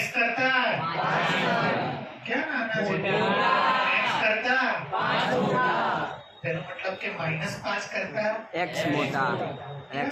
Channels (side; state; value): both; identical; correlation 1.00